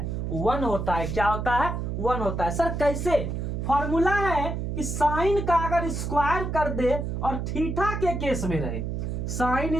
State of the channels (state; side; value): noise; right; hum, 3 dB below the sound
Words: 1 होता है। क्या होता है, 1 होता है। सर कैसे, फॉर्मूला है कि साइन का अगर स्क्वायर कर दे और थीटा के केस में रहे,